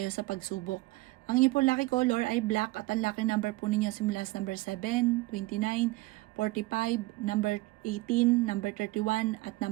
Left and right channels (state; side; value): quieter; left; 20.8 dB